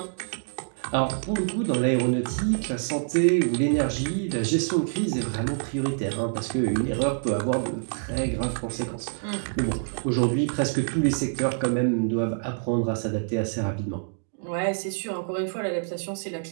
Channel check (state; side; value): silent; left; digital silence